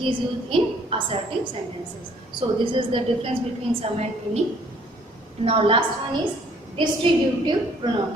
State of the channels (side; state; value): both; normal; correlation 0.60